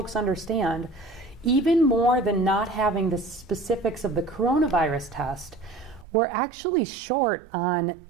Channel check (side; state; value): left; drops out; at 6.1 s